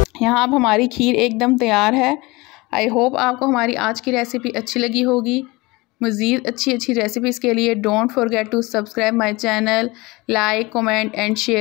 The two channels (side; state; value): right; quieter; 23.0 dB